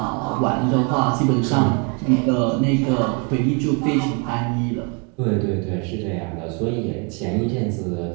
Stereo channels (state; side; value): quieter; left; 33.8 dB